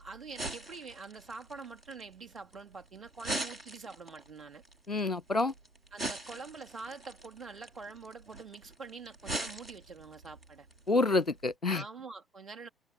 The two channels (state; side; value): normal; both; correlation 0.58